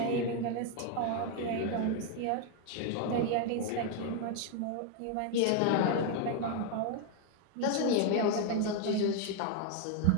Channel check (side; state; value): both; different; correlation 0.01